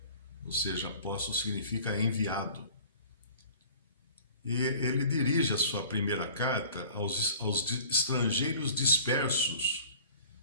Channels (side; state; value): both; inverted; correlation -0.46